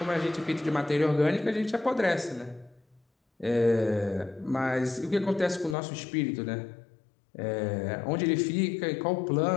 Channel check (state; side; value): drops out; right; at 5.8 s